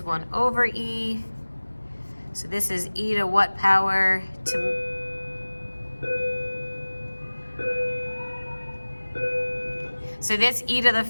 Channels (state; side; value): inverted; both; correlation -1.00